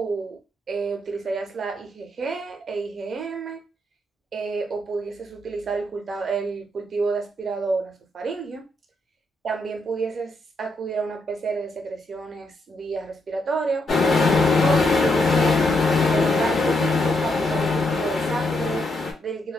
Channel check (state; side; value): normal; both; correlation 0.78